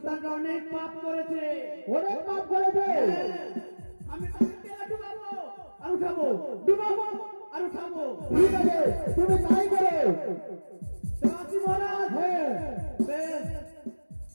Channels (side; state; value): both; inverted; correlation -1.00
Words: অনেক পাপ করেছে। অনেক পাপ করেছে। আমি তাকে তেলে ডুবাবো আর উঠাবো, ডুবাবো আর উঠাবো। ঠিক আছে, তুমি তাই করো। তো আসি মহারাজ। হ্যাঁ, বেশ।